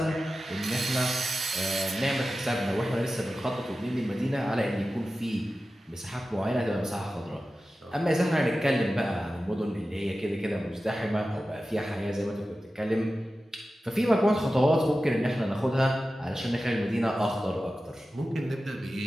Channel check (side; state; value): both; normal; correlation 0.94